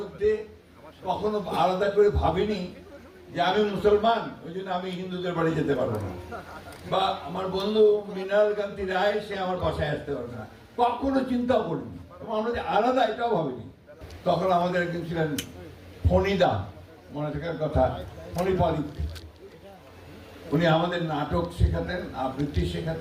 কখনো আলাদা করে ভাবিনি যে আমি মুসলমান, ওই জন্য আমি হিন্দুদের বাড়ি যেতে পারবো না, বা আমার বন্ধু মৃণাল কান্তি রায় সে আমার বাসায় আসতে পারবে না, কখনো চিন্তাও করিনি। আমরা যে আলাদা এটাও ভাবিনি। তখন আমাদের একজন ছিলেন ফণিদা, মনে থাকার কথা, ফণিপালি। উনি আমাদের নাটক শেখাতেন, আবৃত্তি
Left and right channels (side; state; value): both; identical; correlation 1.00